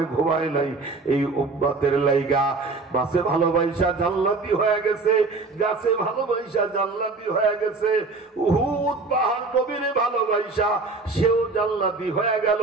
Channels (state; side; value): quieter; left; 3.8 dB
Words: ঘুমায় নাই, এই উম্মতের লাইগা মাছে ভালোবাসা জান্নাতি হয়ে গেছে, গাছে ভালোবাসা জান্নাতি হয়ে গেছে। উহুদ পাহাড় নবীরে ভালোবাসা, সেও জান্নাতি হয়ে গেল।